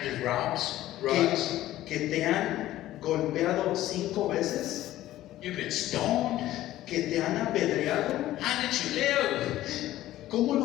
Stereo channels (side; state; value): right; quieter; 14.6 dB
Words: with rods. ¿Que te han golpeado 5 veces? You've been stoned. ¿Que te han apedreado? How did you live? ¿Cómo